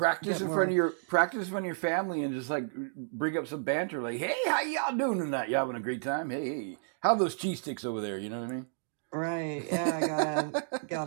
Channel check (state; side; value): silent; left; digital silence